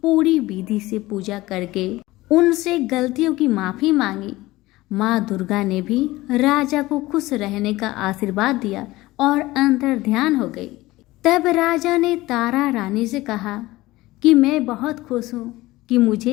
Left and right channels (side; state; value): right; quieter; 18.6 dB